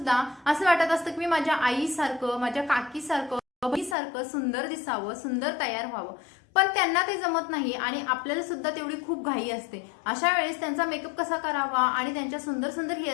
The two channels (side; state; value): right; drops out; at 4.0 s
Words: असं वाटत असतं की मी माझ्या आईसारखं, माझ्या काकीसारखं, बहिणीसारखं सुंदर दिसावं, सुंदर तयार व्हावं. पण त्यांना ते जमत नाही आणि आपल्याला सुद्धा तेवढी खूप घाई असते. अशा वेळेस त्यांचा मेकअप कसा करावा आणि त्यांच्या सुंदर सुंदर